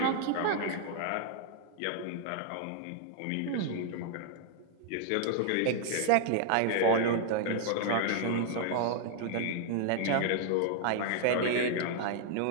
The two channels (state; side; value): different; both; correlation -0.01